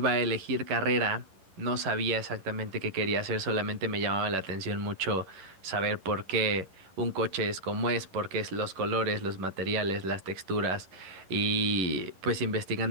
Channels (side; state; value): left; late; 11 ms